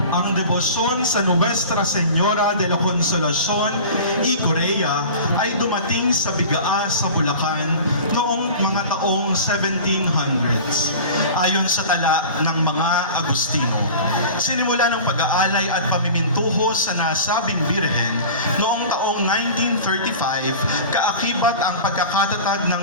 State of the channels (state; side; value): inverted; both; correlation -0.38